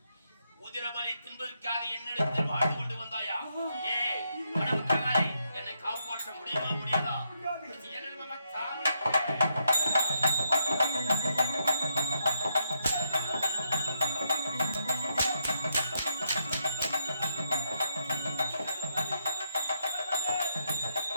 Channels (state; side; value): inverted; both; correlation -0.79